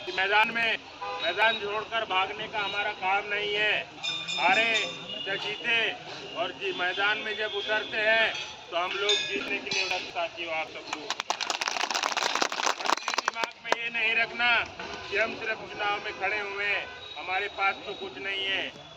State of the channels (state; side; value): identical; both; correlation 1.00